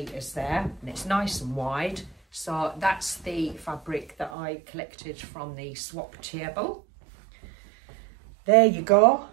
there, and it's nice and wide. So that's the fabric that I collected from the swap table. There you go.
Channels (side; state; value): left; drops out; at 4.4 s